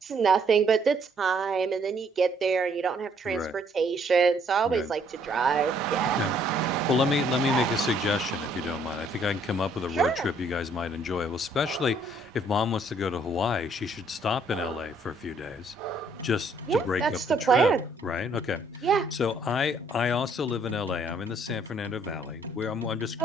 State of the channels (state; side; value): normal; both; correlation 0.65